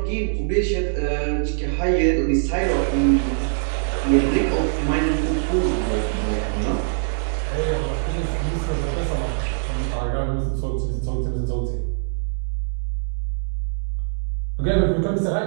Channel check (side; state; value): left; silent; digital silence